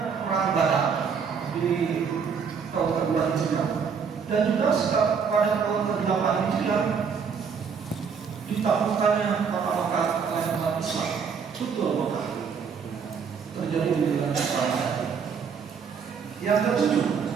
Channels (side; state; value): left; quieter; 6.3 dB